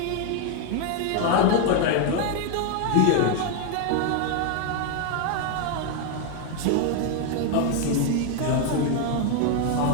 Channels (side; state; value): both; different; correlation 0.01